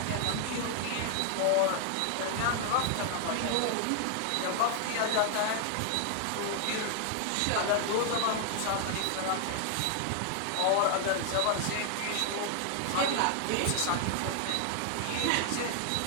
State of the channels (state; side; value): different; both; correlation 0.00